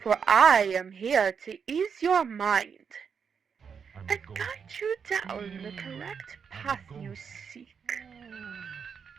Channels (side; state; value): left; quieter; 6.5 dB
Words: for I am here to ease your mind and guide you down the correct path you seek.